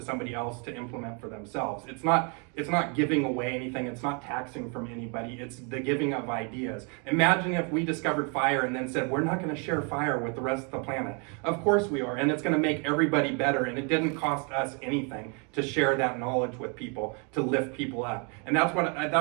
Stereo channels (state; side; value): quieter; left; 35.5 dB